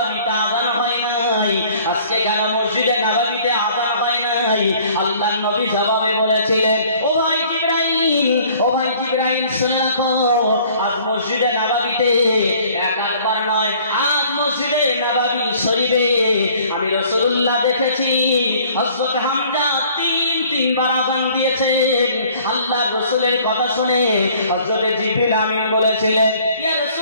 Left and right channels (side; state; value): both; inverted; correlation -0.55